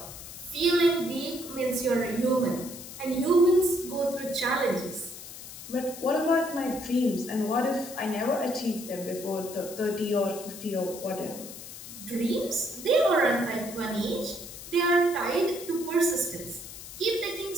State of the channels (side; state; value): left; noise; hiss, 13 dB below the sound